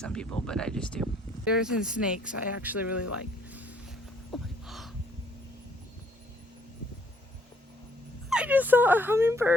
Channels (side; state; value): both; normal; correlation 0.64